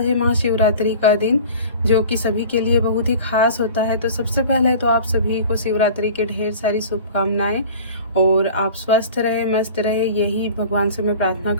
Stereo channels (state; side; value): inverted; both; correlation -0.41